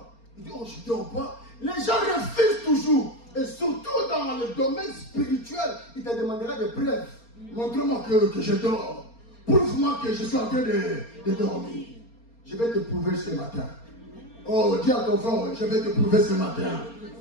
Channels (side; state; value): right; late; 4.3 ms